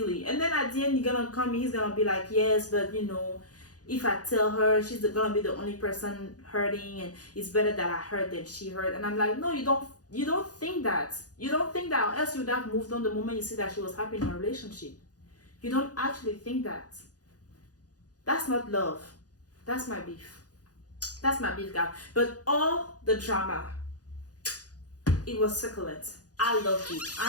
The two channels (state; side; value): late; right; 0.68 ms